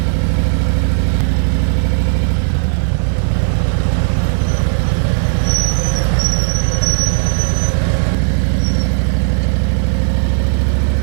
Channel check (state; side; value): silent; left; digital silence